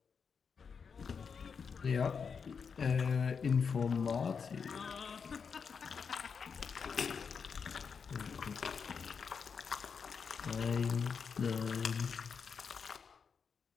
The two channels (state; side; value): quieter; right; 6.0 dB